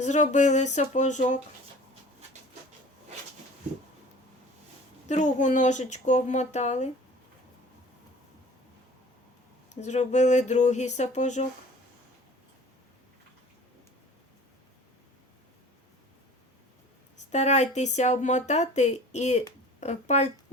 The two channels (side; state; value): both; normal; correlation 0.45